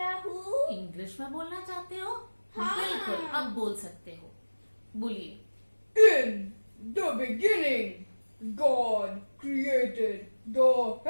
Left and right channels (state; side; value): inverted; both; correlation -1.00